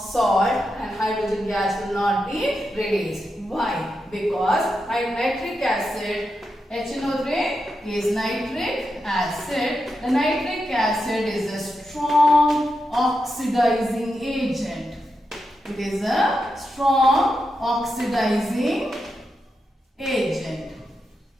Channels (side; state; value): both; normal; correlation 0.87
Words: and hydrogen gas will not be released. Why? Because nitric acid, HNO3 is nitric acid. The nitric acid is a strong oxidizing agent. It is a strong oxidizing agent.